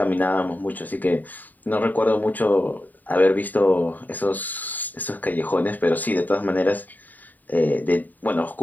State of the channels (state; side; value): late; right; 0.085 ms